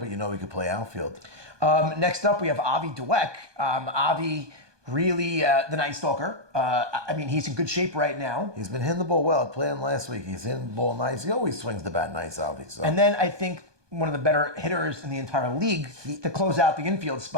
he could play outfield. Next up, we have Avi Dweck. Avi, really the Night Stalker. He's in good shape right now. He's been hitting the ball well. Playing last week, he's hitting the ball nice. He always swings the bat nice, Avi. So. And then I think one of the better hitters in the entire league to close out the infield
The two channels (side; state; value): left; late; 1.2 ms